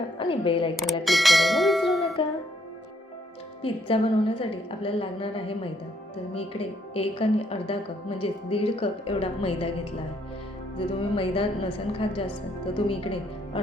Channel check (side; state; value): both; normal; correlation 0.70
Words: आणि बेल आयकॉनला क्लिक करायला विसरू नका. पिझ्झा बनवण्यासाठी आपल्याला लागणार आहे मैदा. तर मी इकडे 1 आणि अर्धा कप म्हणजे 1.5 कप एवढा मैदा घेतला आहे. जर तुम्ही मैदा नसेल खात जास्त तर तुम्ही इकडे